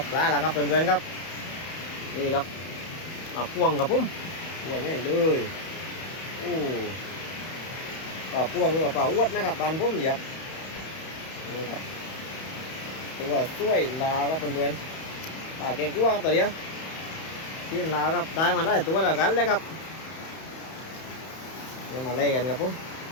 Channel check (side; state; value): right; late; 31 ms